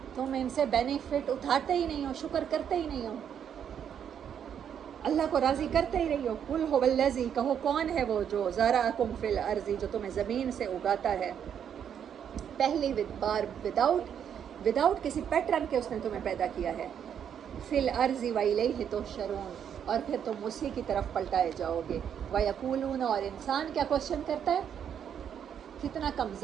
تم ان سے بینیفٹ اٹھاتے ہی نہیں ہو، شکر کرتے ہی نہیں ہو، اللہ کو راضی کرتے ہی رہی ہو۔ قل هو الذی، کہو کون ہے وہ جو ذرأکم فی الارض، جو تمہیں زمین سے اگاتا ہے، پہلی بار وداؤٹ کسی پیٹرن کے اس نے تمہیں پیدا کیا ہے، فی الارض والیہ تحشرون، اور پھر تم اسی کی طرف پلٹائے جاؤ گے۔ ویقولون، اور انسان کیا کوشچن کرتا ہے، کتنا کم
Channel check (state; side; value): quieter; left; 8.6 dB